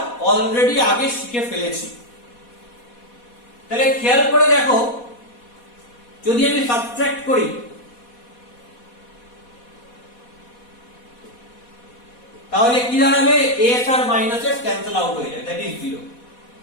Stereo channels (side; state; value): right; late; 4.1 ms